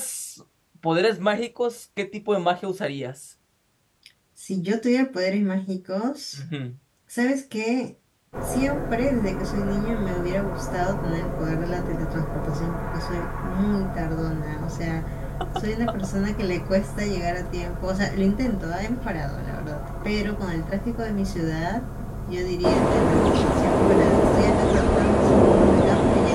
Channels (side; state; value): both; identical; correlation 1.00